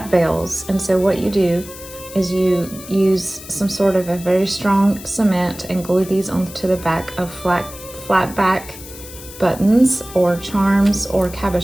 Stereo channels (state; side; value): noise; left; hiss, 15 dB below the sound